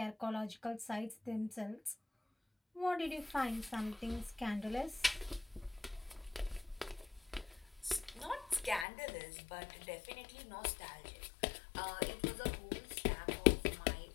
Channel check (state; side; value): drops out; right; at 8.8 s